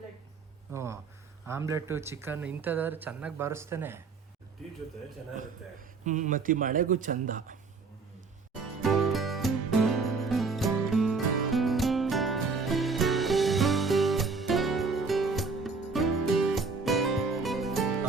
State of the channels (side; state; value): left; quieter; 4.5 dB